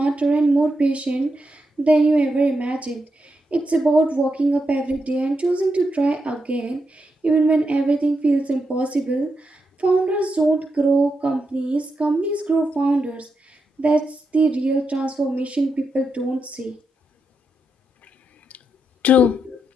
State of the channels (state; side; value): normal; both; correlation 0.84